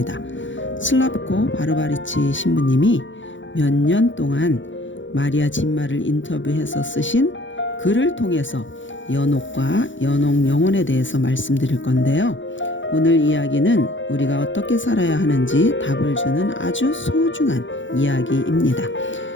슬라브코 바르바리치 신부님이 몇 년 동안 마리아 진마를 인터뷰해서 쓰신 글을 통해서 연옥과 연옥 영혼에 대해서 말씀드릴 건데요. 오늘 이야기는 우리가 어떻게 살아야 하는지 답을 주는 아주 소중한 이야기입니다.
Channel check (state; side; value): late; right; 0.55 ms